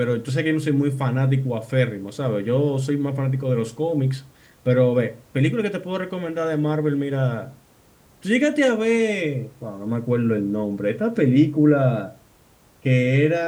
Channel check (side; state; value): both; identical; correlation 1.00